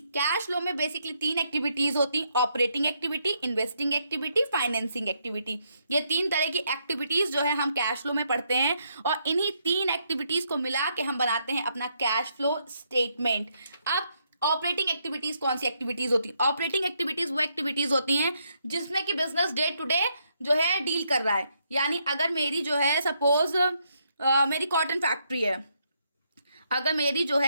कैश फ्लो में बेसिकली 3 एक्टिविटीज होती, operating activity, investing activity, financing activity. ये 3 तरह की एक्टिविटीज जो है हम कैश फ्लो में पढ़ते हैं, और इन्हीं 3 एक्टिविटीज को मिला के हम बनाते हैं अपना कैश फ्लो स्टेटमेंट। अब ऑपरेटिंग एक्टिविटीज कौन सी एक्टिविटीज होती है? ऑपरेटिंग एक्टिविटीज वो एक्टिविटीज होती हैं जिसमें कि बिजनेस डे टू डे जो है डील कर रहा है। यानी अगर मेरी जो है सपोज मेरी कॉटन फैक्ट्री है, अगर मेरी जो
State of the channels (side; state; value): both; inverted; correlation -0.76